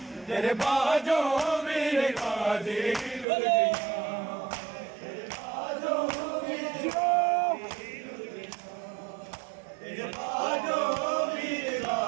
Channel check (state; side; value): drops out; left; at 3.2 s